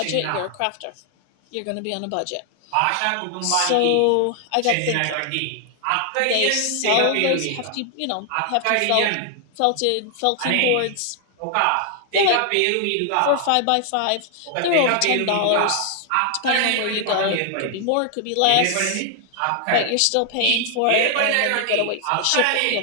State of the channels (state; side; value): different; both; correlation 0.00